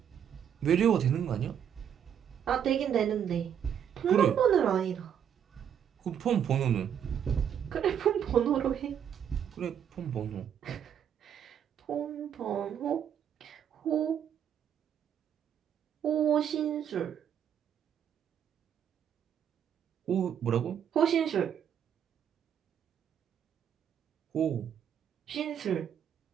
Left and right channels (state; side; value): quieter; left; 8.8 dB